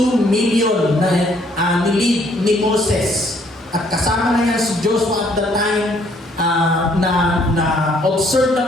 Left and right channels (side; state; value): both; normal; correlation 0.65